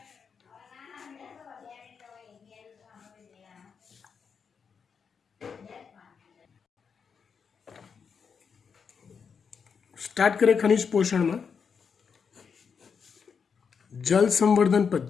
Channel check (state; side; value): quieter; right; 6.2 dB